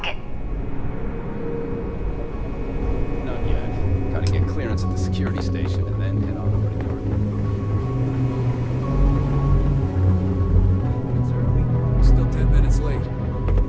Not yet. Gotta get clearance glance at the security station and then head on over to Garden. Still 10 minutes late.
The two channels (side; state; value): both; identical; correlation 1.00